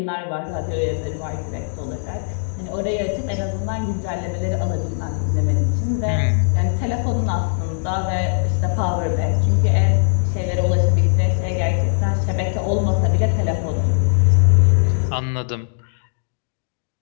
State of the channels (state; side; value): silent; right; digital silence